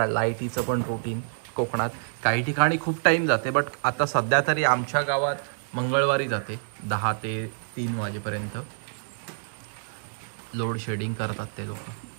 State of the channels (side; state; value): left; silent; 60 dB below the other